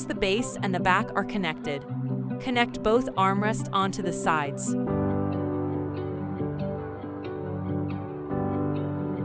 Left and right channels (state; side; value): identical; both; correlation 1.00